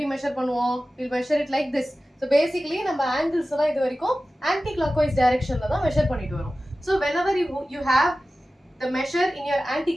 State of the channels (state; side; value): normal; both; correlation 0.95